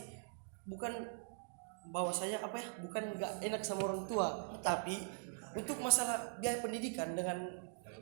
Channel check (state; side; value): silent; left; digital silence